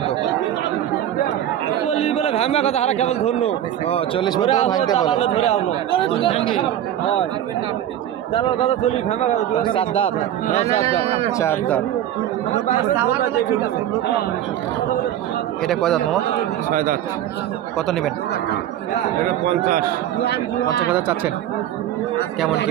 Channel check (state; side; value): quieter; left; 11.5 dB